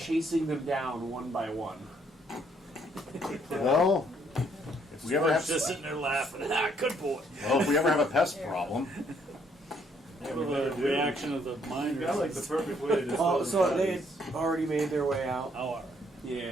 them down one by one. Well, if we ever have just sitting there laughing. Ah, good boy. if we ever have a pest problem, Yeah, Well, we better the do. reaction of the miners. You got like the perfect way to dispose Oh, of so they bodies. had already made their way out. Oh, alright.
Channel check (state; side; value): normal; both; correlation 0.68